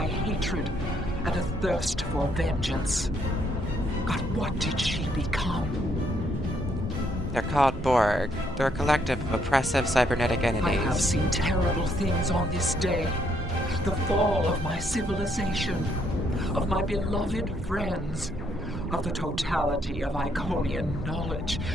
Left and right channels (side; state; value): both; normal; correlation 0.71